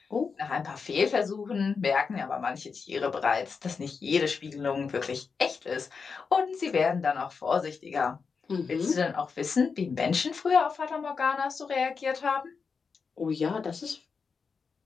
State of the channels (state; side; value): quieter; right; 5.3 dB